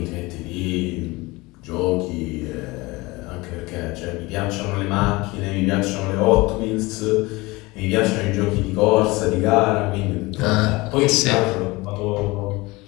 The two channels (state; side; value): quieter; right; 22.6 dB